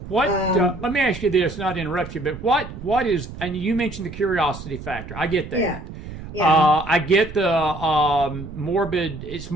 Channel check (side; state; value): right; noise; rumble, 12 dB below the sound